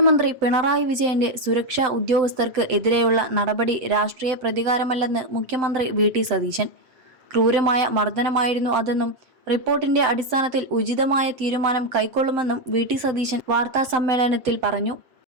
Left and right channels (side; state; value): left; late; 7.8 ms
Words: പിണറായി വിജയന്റെ സുരക്ഷാ ഉദ്യോഗസ്ഥർക്ക് എതിരെയുള്ള നടപടി രാഷ്ട്രീയ പ്രതികാരമല്ലെന്ന് മുഖ്യമന്ത്രി വി.ടി. സതീശൻ. ക്രൂരമായ മർദ്ദനമായിരുന്നു അതെന്നും റിപ്പോർട്ടിന്റെ അടിസ്ഥാനത്തിൽ ഉചിതമായ തീരുമാനം കൈക്കൊള്ളുമെന്നും വി.ടി. സതീശൻ വാർത്താസമ്മേളനത്തിൽ പറഞ്ഞു.